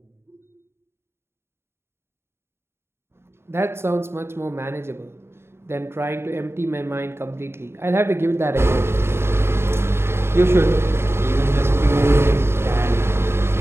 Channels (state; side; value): late; left; 0.12 ms